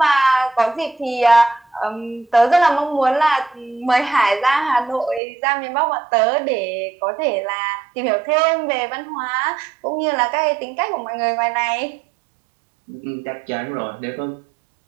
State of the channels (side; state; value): left; drops out; at 5.2 s